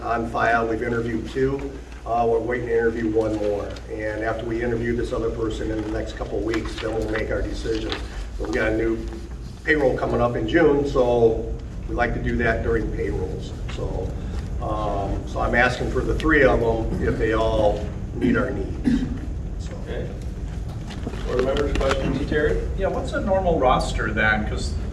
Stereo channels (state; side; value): identical; both; correlation 1.00